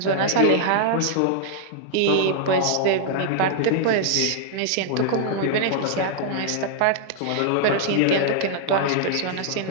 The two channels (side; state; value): both; different; correlation -0.01